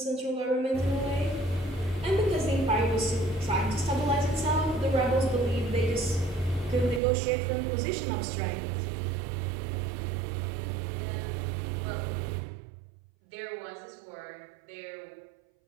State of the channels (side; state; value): left; drops out; at 7.0 s